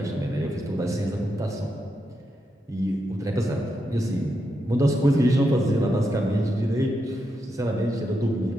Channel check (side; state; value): both; normal; correlation 0.84